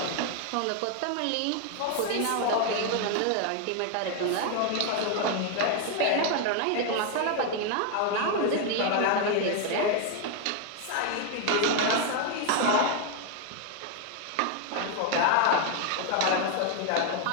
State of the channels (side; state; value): both; different; correlation 0.01